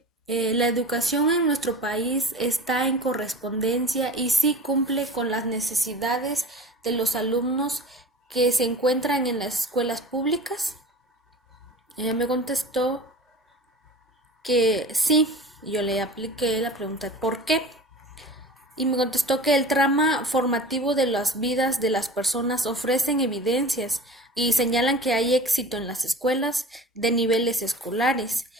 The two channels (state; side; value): normal; both; correlation 0.38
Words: la educación en nuestro país está en correspondencia y sí cumple con las necesidades de los alumnos que se encuentran en las escuelas públicas. Ella me contestó que sí, yo le apliqué la pregunta ¿por qué? Y me contestó que el trama formativo de las vidas de las personas ofrecen evidencias y señalan que hay éxito en las escuelas de niveles escolares